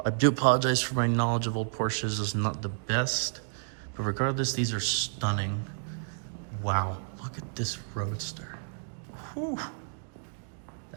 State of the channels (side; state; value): left; silent; digital silence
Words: do apologize for my knowledge of old Porsches. It's not the best, but regardless, these are stunning. Wow, look at this Roadster. Whew.